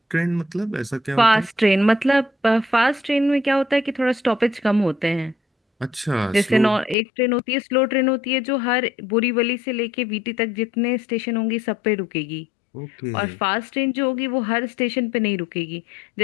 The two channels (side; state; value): right; drops out; at 7.0 s